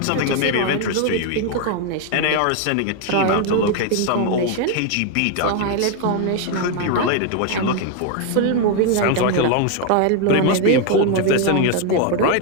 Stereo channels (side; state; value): both; different; correlation 0.01